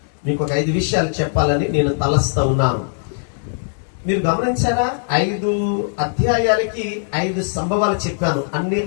మీకు ఒక 5 విషయాలు చెప్పాలని నేను తలస్తూ ఉన్నాను. మీరు గమనించారా? 5 అధ్యాయాలకి 5 సంభవాలు చెప్పాను. అన్ని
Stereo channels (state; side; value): silent; right; 66 dB below the other